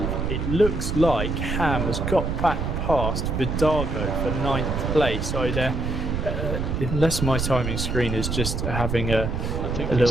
it looks like Ham has got back past Vidago for 9th place. Either unless my timing screen is just having a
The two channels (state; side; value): noise; right; rumble, 2 dB below the sound